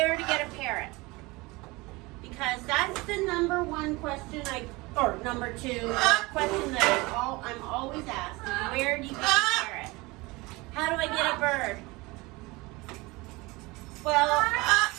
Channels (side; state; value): left; quieter; 23.4 dB